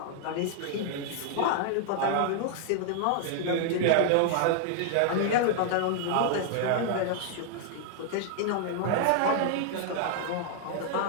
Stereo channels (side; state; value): both; different; correlation -0.01